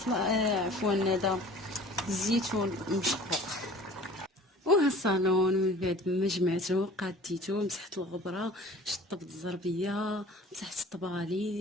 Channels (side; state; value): both; normal; correlation 0.46